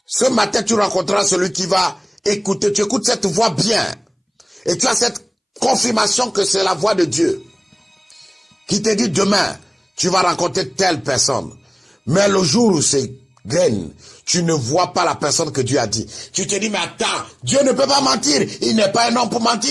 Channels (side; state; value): both; identical; correlation 1.00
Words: ce matin, tu rencontreras celui qui va écouter. Tu écoutes cette voix bien. Et tu as cette confirmation que c'est la voix de Dieu qui te dit demain, tu vas rencontrer telle personne. Mais le jour où c'est graine, tu ne vois pas la personne que Dieu a dit. Tu te dis, mais attends, Dieu ne peut pas mentir. Il n'est pas un homme pour